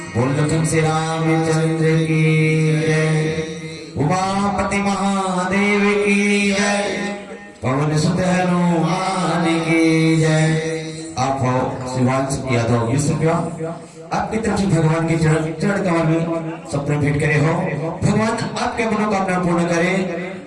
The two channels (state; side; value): identical; both; correlation 1.00